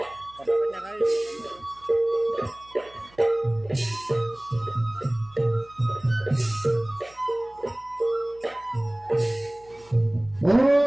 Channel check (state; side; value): noise; right; hum, 27 dB below the sound